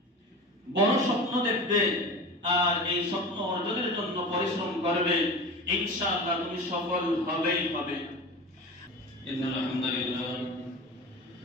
বড় স্বপ্ন দেখবে আর এই স্বপ্ন অর্জনের জন্য পরিশ্রম করবে, ইনশাআল্লাহ তুমি সফল হবেই হবে। ইন্নাল হামদুলিল্লাহ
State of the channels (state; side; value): normal; both; correlation 0.32